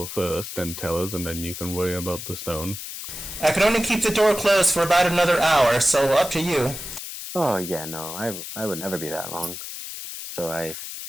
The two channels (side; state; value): left; noise; hiss, 9 dB below the sound